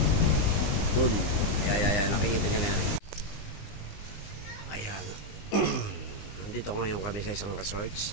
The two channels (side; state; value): right; late; 19 ms